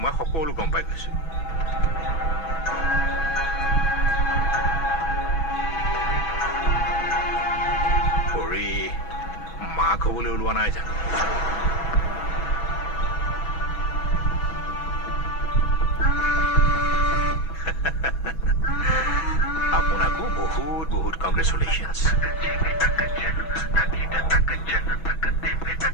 মই সকলো গম পাই গৈছো পৰি মাক হ'বলৈ ওলোৱা নাই জানো আপোনাকো বহুত বহুত কংগ্ৰেচুলেশ্যনছ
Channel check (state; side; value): late; right; 6.1 ms